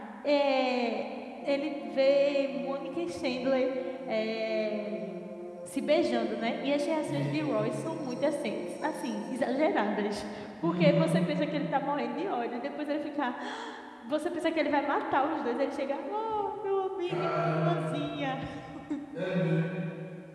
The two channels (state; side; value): identical; both; correlation 1.00